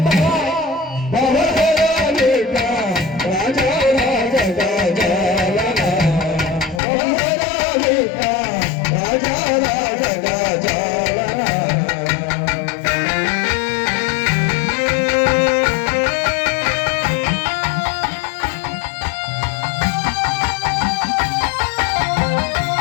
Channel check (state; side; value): drops out; right; at 6.8 s